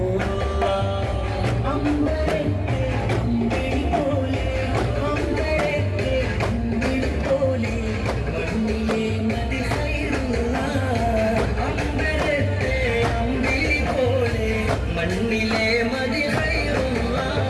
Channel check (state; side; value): identical; both; correlation 1.00